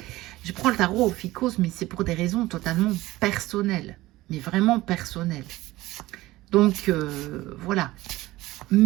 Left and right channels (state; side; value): quieter; left; 18.0 dB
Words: je prends le tarot Ophiuchose, mais c'est pour des raisons totalement personnelles. Mais vraiment personnelles. Donc, voilà.